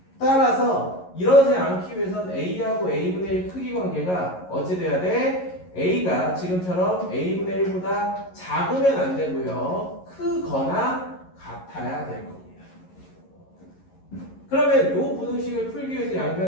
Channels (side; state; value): right; late; 11 ms